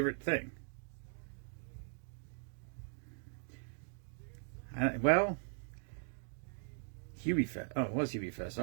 thing. Hubie Fest. Oh, it was Hubie Fest.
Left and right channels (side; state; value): left; silent; digital silence